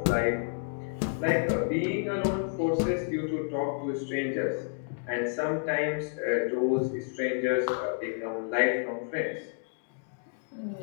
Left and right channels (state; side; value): silent; right; digital silence